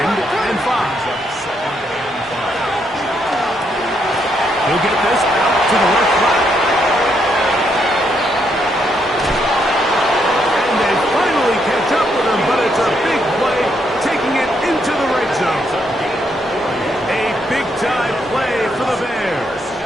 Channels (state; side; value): normal; both; correlation 0.76